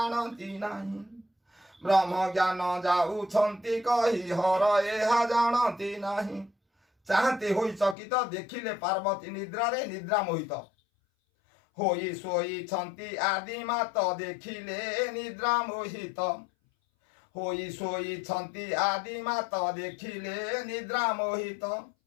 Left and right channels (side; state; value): right; drops out; at 8.0 s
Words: नहीं ब्रह्म ज्ञान जाऊछंती कही हर यह जानती नहीं चाहते होई चकित देखिले पार्वती निद्रा रे निद्रा मोहित होई सोई छंती आदि मात देखिले निद्रा मोहित होई सोई छंती आदि मात देखिले निद्रा मोहित